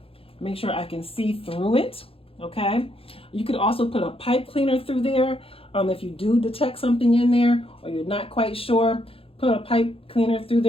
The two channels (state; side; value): late; right; 0.27 ms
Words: make sure I can see through it. Okay, you could also put a pipe cleaner through there if you do detect something in there or you're not quite sure. Put a pipe cleaner through